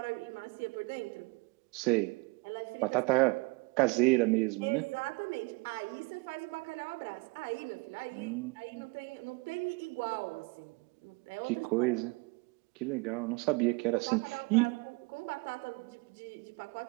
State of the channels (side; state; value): left; quieter; 27.6 dB